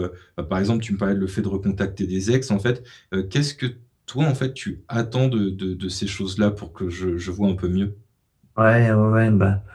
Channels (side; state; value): both; identical; correlation 1.00